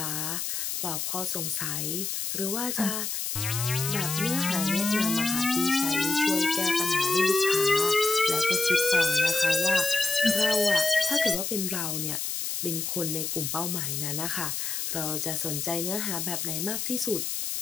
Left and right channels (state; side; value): noise; left; hiss, 3 dB below the sound